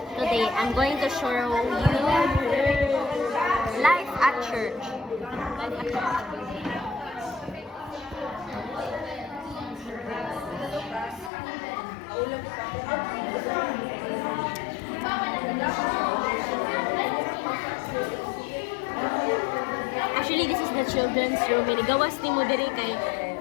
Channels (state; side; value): drops out; right; at 11.3 s